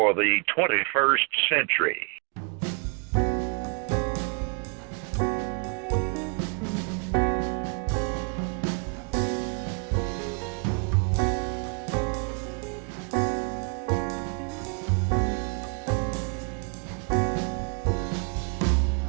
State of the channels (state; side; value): quieter; left; 39.7 dB